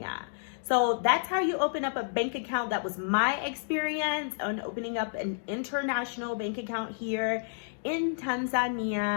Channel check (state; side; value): silent; right; digital silence